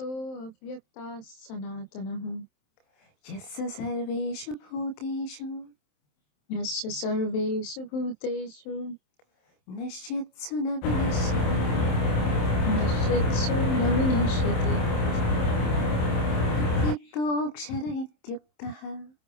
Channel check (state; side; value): late; right; 27 ms